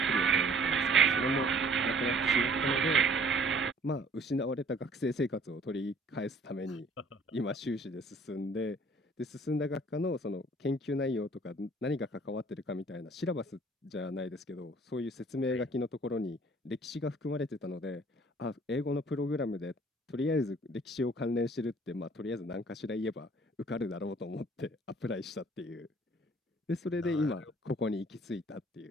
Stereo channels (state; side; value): normal; both; correlation 0.55